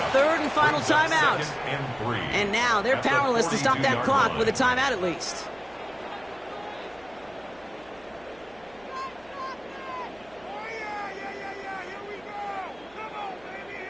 third and final timeout. And now they're powerless to stop that clock with a timeout at least.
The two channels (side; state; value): right; noise; hum, 27 dB below the sound